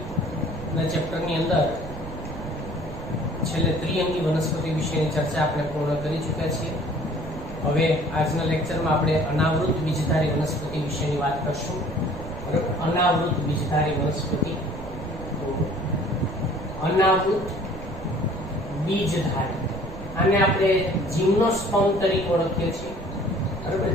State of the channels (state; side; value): noise; right; rumble, 11 dB below the sound